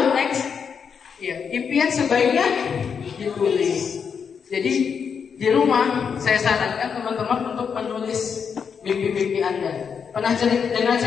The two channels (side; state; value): right; quieter; 6.6 dB